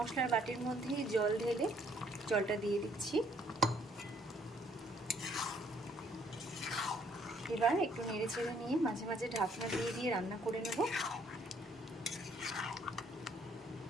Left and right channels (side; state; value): both; normal; correlation 0.65